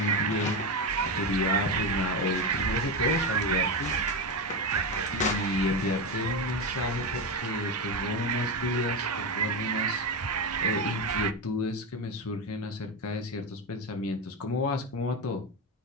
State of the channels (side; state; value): both; normal; correlation 0.13